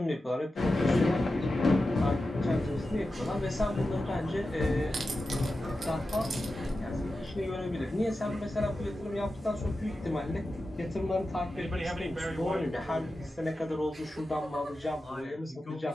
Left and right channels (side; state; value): both; normal; correlation 0.92